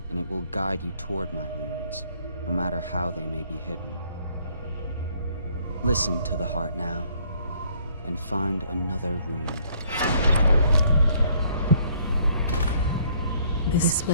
and it will guide you toward my runes, no matter how they may be hidden. Listen to the heart now, and find another rune. This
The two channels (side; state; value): both; inverted; correlation -0.63